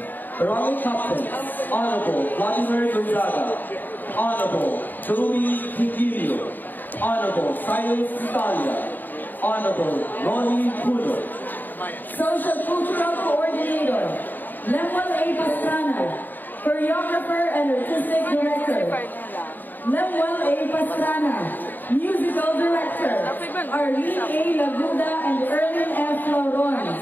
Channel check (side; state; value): right; late; 0.089 ms